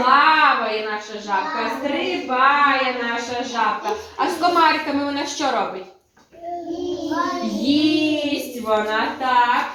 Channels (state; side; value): identical; both; correlation 1.00